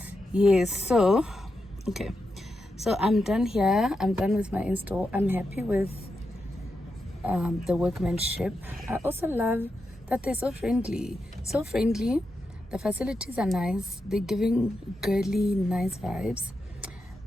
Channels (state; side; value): normal; both; correlation 0.87